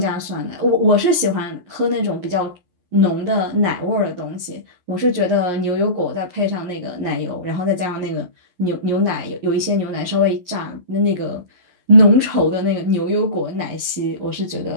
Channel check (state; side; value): late; left; 11 ms